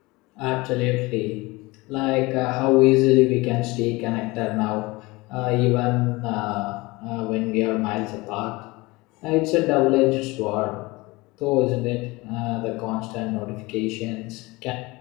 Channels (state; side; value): quieter; right; 22.8 dB